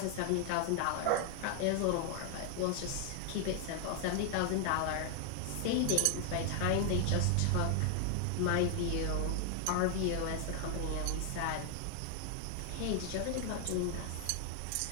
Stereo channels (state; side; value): different; both; correlation 0.00